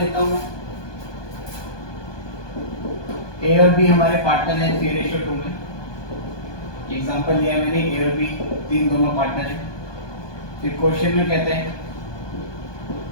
हूँ। ए और बी हमारे पार्टनर है 3:2 में। एग्जांपल लिया मैंने, ए और बी तीन दोनों पार्टनर है। फिर क्वेश्चन में कहते हैं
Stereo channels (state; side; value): late; right; 1.2 ms